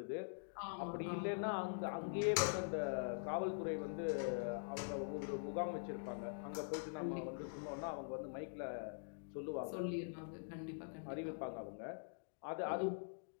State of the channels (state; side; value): silent; right; digital silence